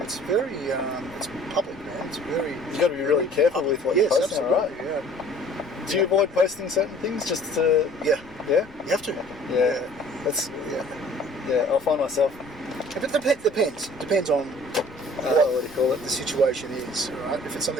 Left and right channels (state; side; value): noise; left; rumble, 25 dB below the sound